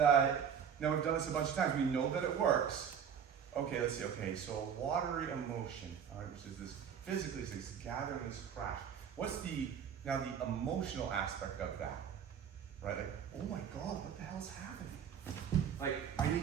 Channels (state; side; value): quieter; left; 7.9 dB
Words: now we've done this a bunch of times, we know that it works. Okay, let's see. Okay, so watery emotion, all right, which is this physically, is this gathering, this crash. What's the emotional aspect of that? Right? Like, oh my God, what the hell's happening? Like, I